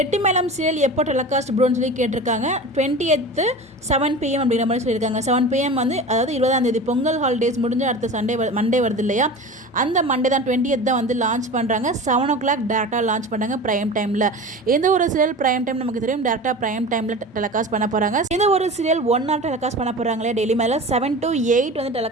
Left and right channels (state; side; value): normal; both; correlation 0.33